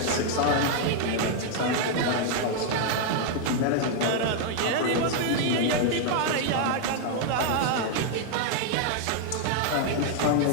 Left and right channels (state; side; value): different; both; correlation 0.00